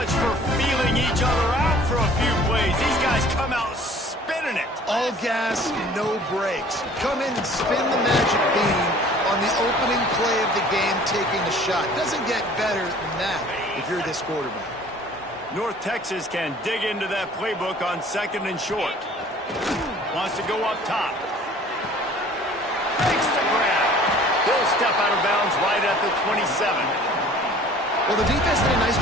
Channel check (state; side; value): normal; both; correlation 0.50